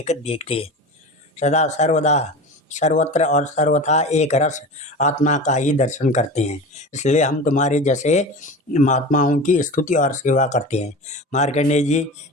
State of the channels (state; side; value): normal; both; correlation 0.31